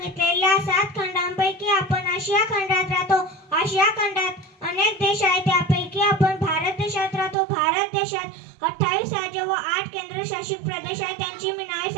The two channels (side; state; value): left; drops out; at 7.4 s